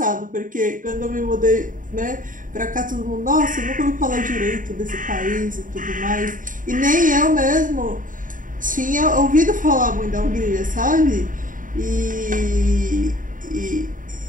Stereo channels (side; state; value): left; late; 0.39 ms